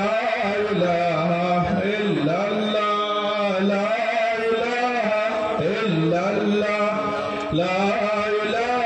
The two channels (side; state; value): both; identical; correlation 1.00